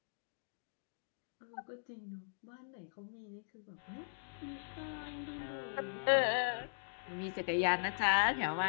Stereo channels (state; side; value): silent; right; digital silence